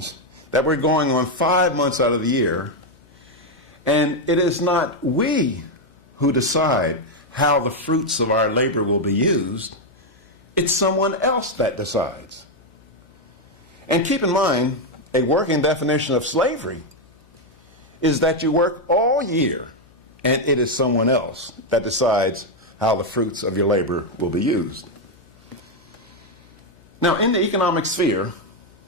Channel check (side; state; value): left; noise; hum, 29 dB below the sound